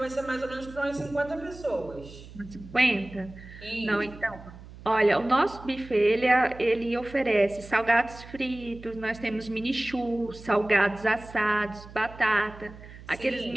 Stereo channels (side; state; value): right; noise; hum, 17 dB below the sound